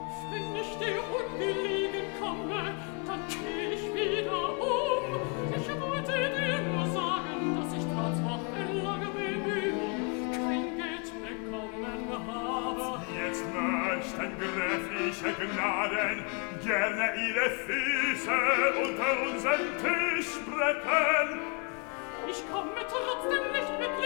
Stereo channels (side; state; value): right; quieter; 34.0 dB